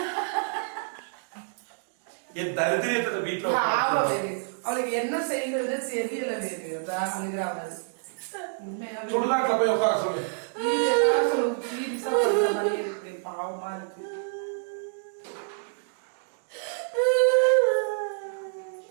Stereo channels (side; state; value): left; silent; digital silence